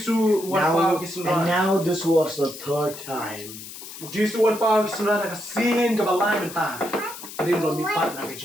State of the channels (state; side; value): noise; left; hiss, 13 dB below the sound